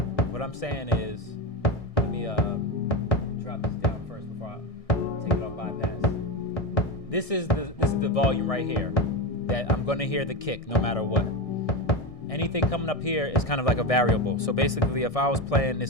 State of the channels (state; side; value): late; right; 1.6 ms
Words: What I'm saying is, let me drop this down first before I take it off bypass. This is the volume right here. that I'm going to hear the kick no matter what. Anything coming up here is kind of like a variable. So basically, if I was playing